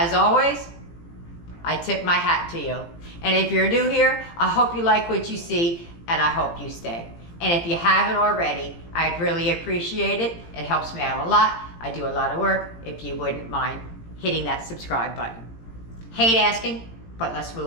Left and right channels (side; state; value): right; late; 18 ms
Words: always, I tip my hat to you. And if you're new here, I hope you like what you see, and I hope you stay. And if you haven't already, I'd really appreciate it. It helps me out a lot. I do a lot of work. If you wouldn't mind hitting that subscribe button. Hate asking, but let's